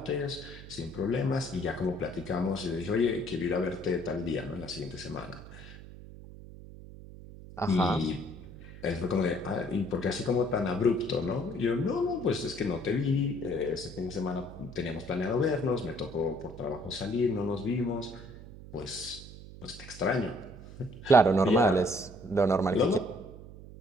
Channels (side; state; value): right; noise; hum, 15 dB below the sound